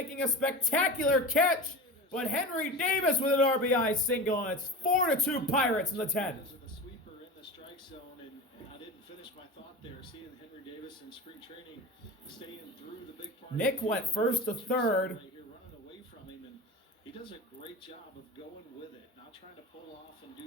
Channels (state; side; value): normal; both; correlation 0.30